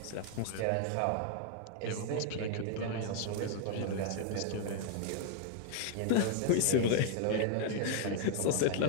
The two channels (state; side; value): different; both; correlation -0.01